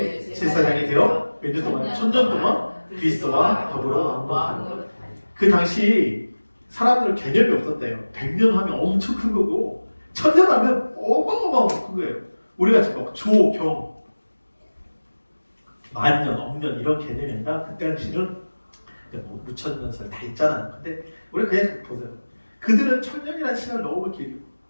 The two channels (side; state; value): both; inverted; correlation -1.00